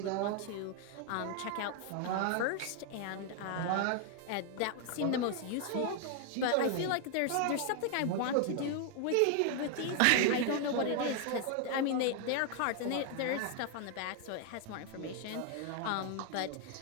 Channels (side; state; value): both; different; correlation 0.00